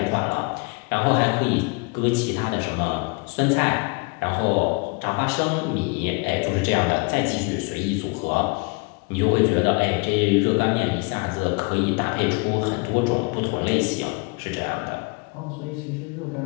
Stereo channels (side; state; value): right; quieter; 30.7 dB